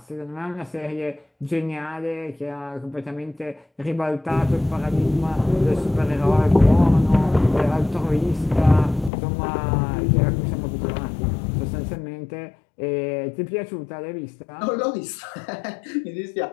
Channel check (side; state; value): right; drops out; at 9.1 s